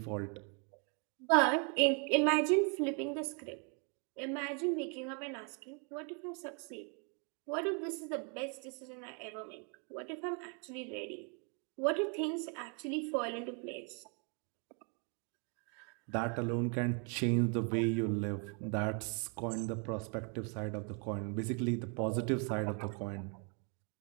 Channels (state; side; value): quieter; left; 37.5 dB